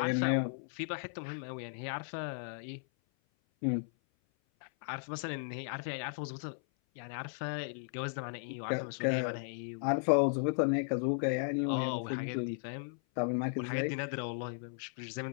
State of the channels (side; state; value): right; silent; 54 dB below the other